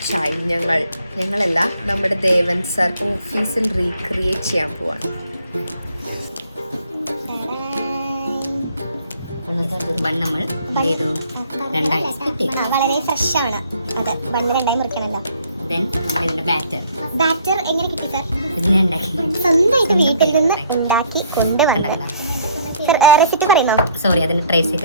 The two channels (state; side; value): inverted; both; correlation -0.61